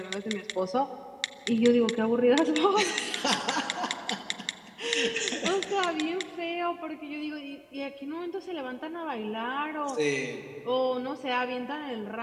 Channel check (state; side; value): identical; both; correlation 1.00